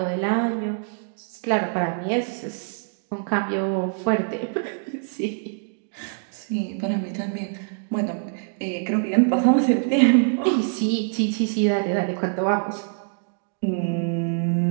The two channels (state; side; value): silent; left; digital silence